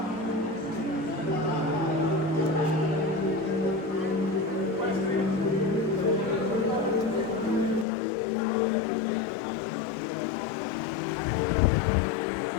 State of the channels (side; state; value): right; drops out; at 7.9 s